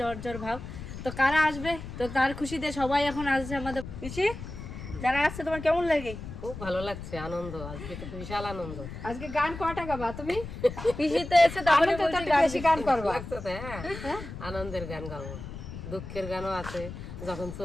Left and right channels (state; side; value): noise; left; rumble, 10 dB below the sound